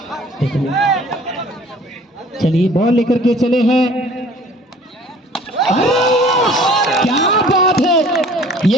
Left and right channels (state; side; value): normal; both; correlation 0.51